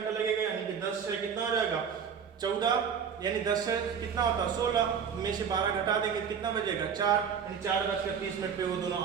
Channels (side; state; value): left; quieter; 7.1 dB